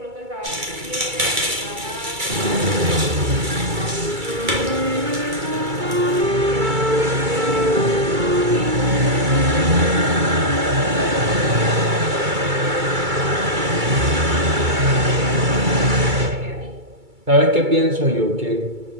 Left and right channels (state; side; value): late; left; 2.3 ms